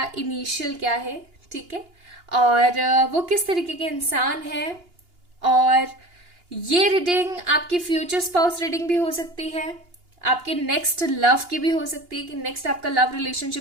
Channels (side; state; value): left; late; 2.8 ms